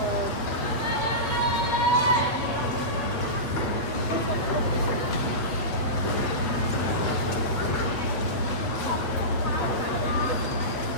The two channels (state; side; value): late; right; 8.5 ms